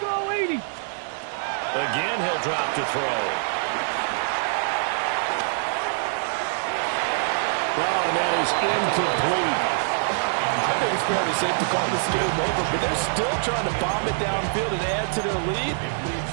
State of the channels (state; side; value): silent; left; digital silence